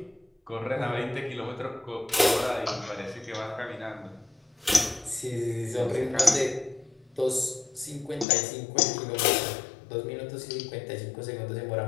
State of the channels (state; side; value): drops out; right; at 8.2 s